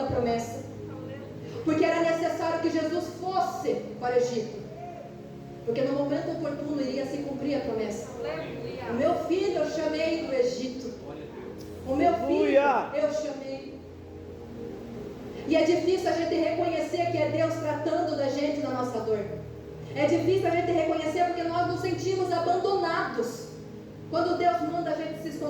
promessa. Porque era necessário que Jesus fosse para o Egito. Porque no momento oportuno iria se cumprir a promessa. Aleluia. O meu filho eu chamei do Egito. O meu filho eu chamei. E é difícil a gente reconhecer que é Deus tratando da gente na nossa dor. É difícil a gente reconhecer porque nós nos sentimos abandonados. Quando Deus manda a gente se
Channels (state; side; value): identical; both; correlation 1.00